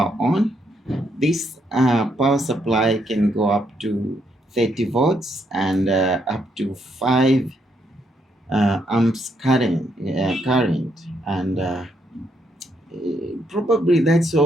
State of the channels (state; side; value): normal; both; correlation 0.75